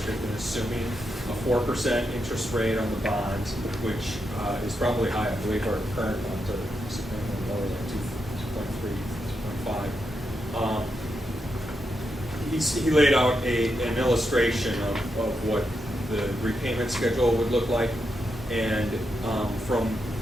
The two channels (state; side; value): normal; both; correlation 0.84